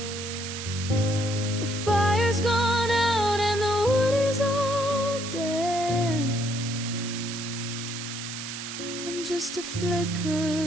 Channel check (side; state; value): right; noise; hiss, 7 dB below the sound